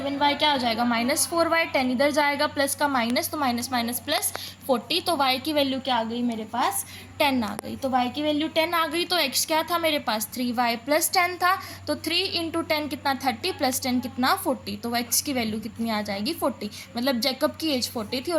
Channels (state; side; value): identical; both; correlation 1.00